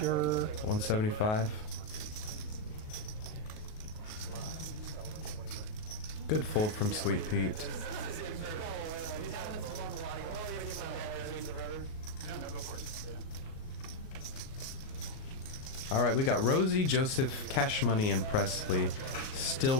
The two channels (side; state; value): right; late; 38 ms